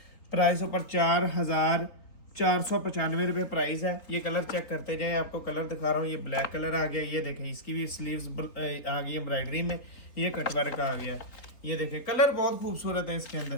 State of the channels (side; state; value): right; late; 3.8 ms